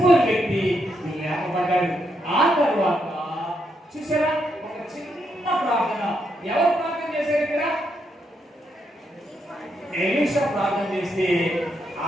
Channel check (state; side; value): normal; both; correlation 0.79